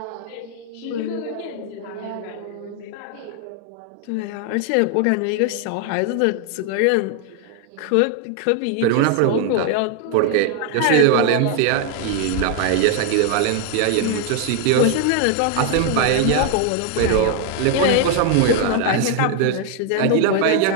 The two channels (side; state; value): both; different; correlation 0.00